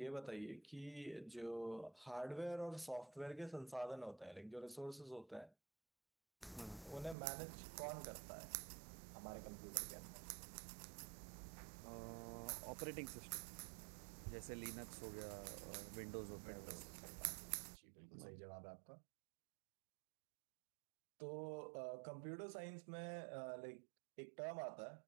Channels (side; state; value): left; drops out; at 7.2 s